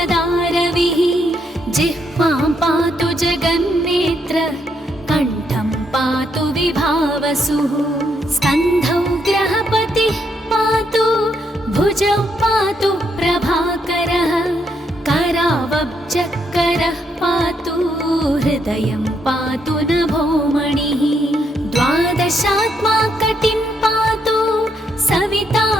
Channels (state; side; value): normal; both; correlation 0.76